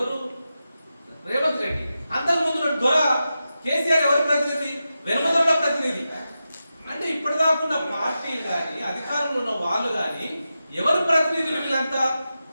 రేవంత్ రెడ్డి. అంతకుముందు దొర కేసీఆర్ ఎవరి ప్రతినిధి? వెనుమదొండ ప్రతినిధి. అంటే ఇప్పటిదాకా ఉన్న పార్టీలు కానీ, అధికారంలో ఉన్న వాళ్ళు కానీ ఎవరు ప్రతినిధులు? వీళ్ళంతా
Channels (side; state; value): both; inverted; correlation -0.91